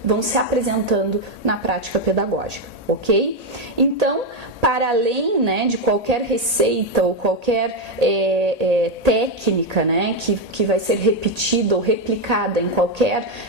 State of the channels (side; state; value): left; late; 1.8 ms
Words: vão se apresentando na prática pedagógica, ok? Então, para além, né, de qualquer receita ou qualquer técnica, né, que vai ser repetida ou replicada em qualquer